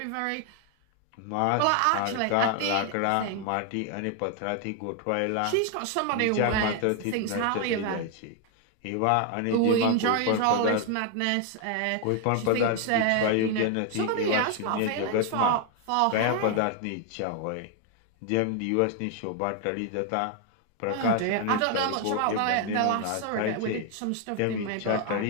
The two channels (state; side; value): different; both; correlation 0.00